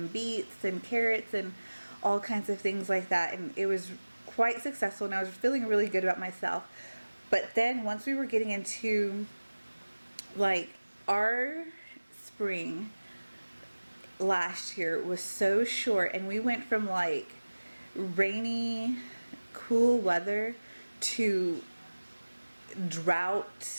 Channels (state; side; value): inverted; both; correlation -1.00